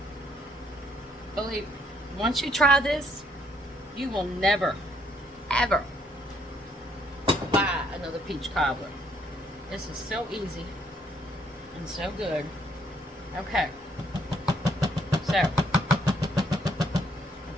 Believe me, once you try this, you will never, ever buy another peach cobbler. This is so easy and so good. Okay, so I've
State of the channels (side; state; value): both; normal; correlation 0.68